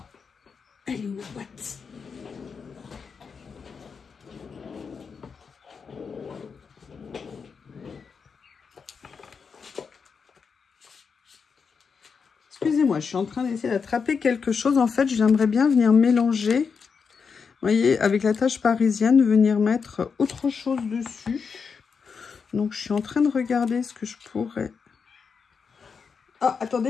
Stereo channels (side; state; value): right; quieter; 5.7 dB